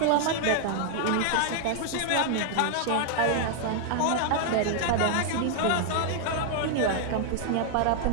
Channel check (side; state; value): both; different; correlation 0.00